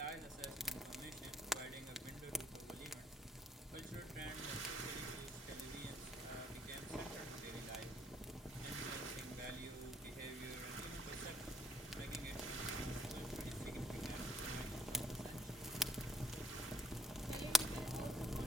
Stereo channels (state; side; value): normal; both; correlation 0.63